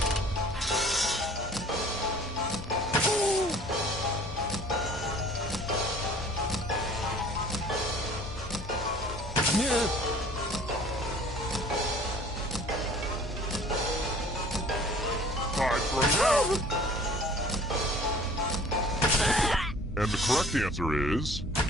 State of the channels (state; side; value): normal; both; correlation 0.50